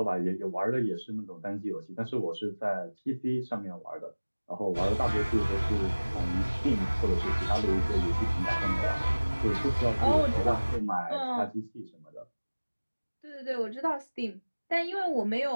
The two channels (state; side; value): inverted; both; correlation -1.00